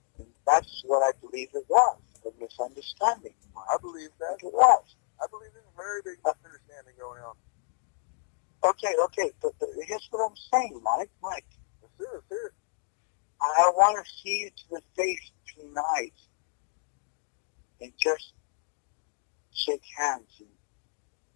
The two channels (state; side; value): silent; right; digital silence